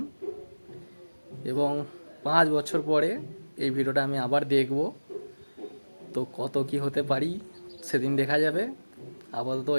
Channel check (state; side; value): inverted; both; correlation -1.00